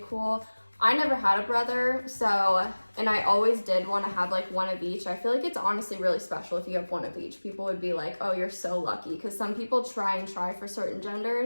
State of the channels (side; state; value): both; inverted; correlation -1.00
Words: cool. I never had a brother, so, and I always did want to have like one of each. I feel like it's honestly really special if you have one of each. People would be like, oh, you're so lucky, because some people try for certain